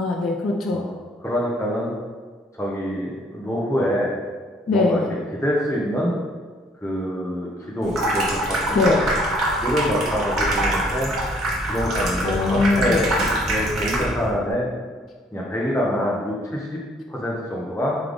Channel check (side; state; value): both; normal; correlation 0.62